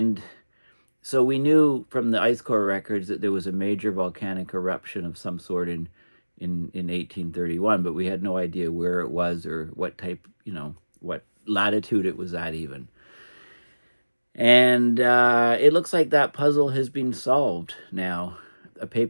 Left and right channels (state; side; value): inverted; both; correlation -1.00